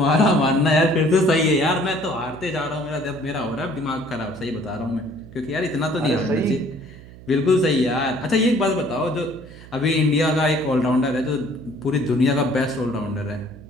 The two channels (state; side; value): noise; right; hum, 18 dB below the sound